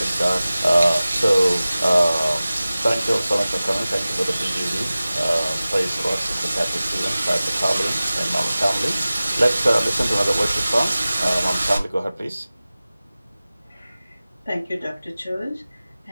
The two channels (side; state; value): both; inverted; correlation -0.97